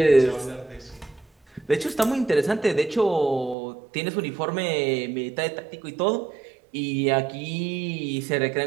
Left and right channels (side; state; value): left; drops out; at 3.6 s